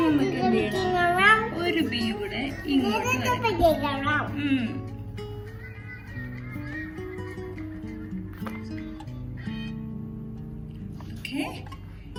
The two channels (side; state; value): both; identical; correlation 1.00